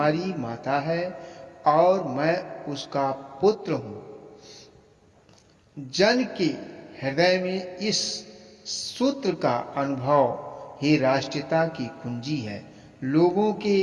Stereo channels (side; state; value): both; identical; correlation 1.00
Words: माता है और मैं उसका पुत्र हूँ। जन के हृदय में इस सूत्र का अनुभव ही राष्ट्रीयता की कुंजी है। लोगों